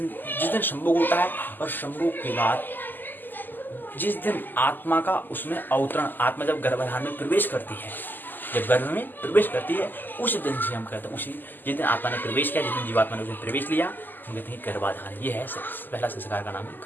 संभोग होता है, और संभोग के बाद जिस दिन आत्मा का उसमें अवतरण, आत्मा जब गर्भाधान में प्रवेश करती है, जब गर्भ में प्रवेश करती है, उस दिन से हम कहते हैं, उसी जिस दिन आत्मा ने प्रवेश किया, जिस दिन जीवात्मा ने उसमें प्रवेश लिया, हम कहते हैं गर्भाधान। ये है पहला संस्कार का नाम है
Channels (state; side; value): late; right; 0.089 ms